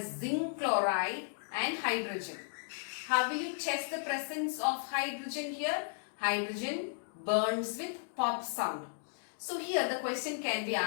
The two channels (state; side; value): silent; right; digital silence